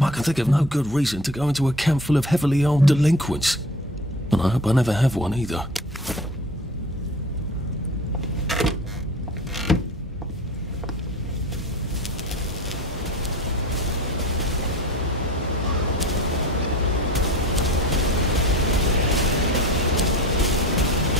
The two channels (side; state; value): both; normal; correlation 0.39